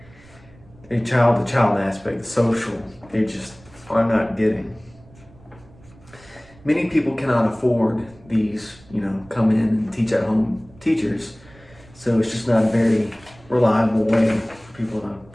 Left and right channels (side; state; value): right; noise; rumble, 25 dB below the sound